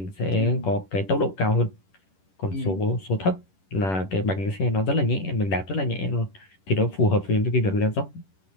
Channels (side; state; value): right; late; 11 ms